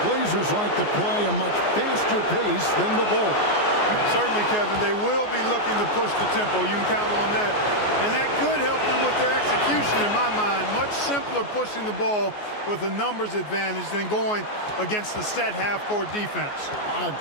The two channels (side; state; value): right; late; 14 ms